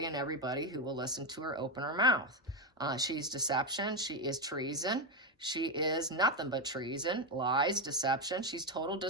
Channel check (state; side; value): normal; both; correlation 0.07